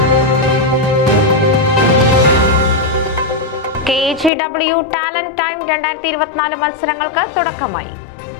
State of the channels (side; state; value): right; drops out; at 4.3 s